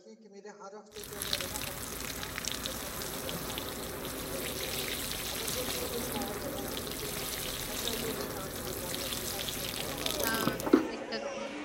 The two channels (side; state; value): both; identical; correlation 1.00